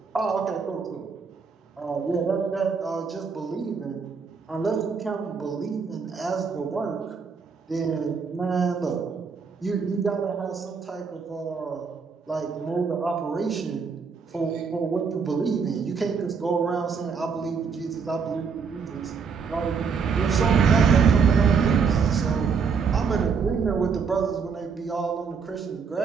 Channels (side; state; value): left; quieter; 5.7 dB